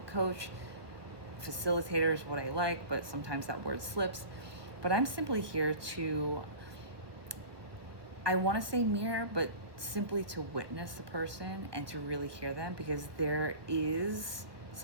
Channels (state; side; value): late; left; 1.2 ms